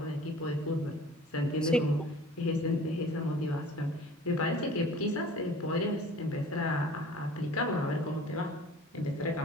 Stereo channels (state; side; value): normal; both; correlation 0.46